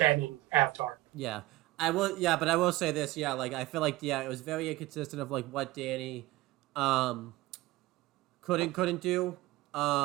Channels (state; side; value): quieter; left; 18.2 dB